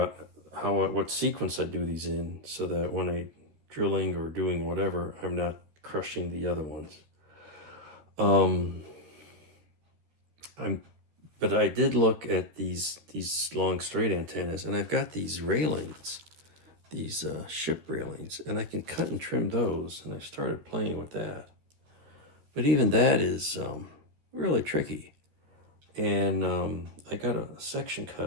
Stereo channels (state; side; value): late; left; 13 ms